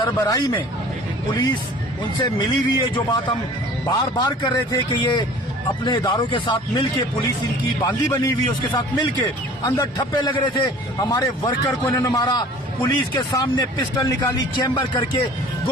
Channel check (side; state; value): both; normal; correlation 0.47